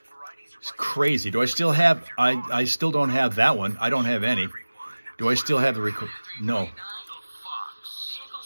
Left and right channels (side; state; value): both; inverted; correlation -1.00